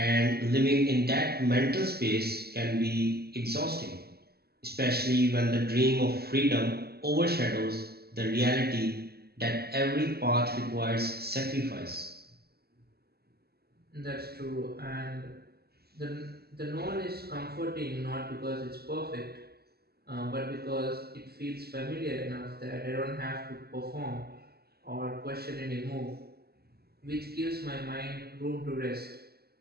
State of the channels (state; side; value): late; left; 0.46 ms